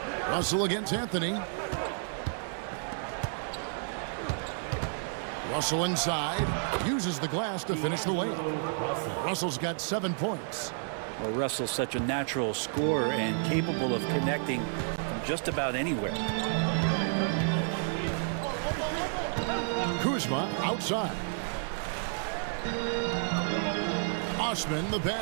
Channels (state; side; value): silent; left; digital silence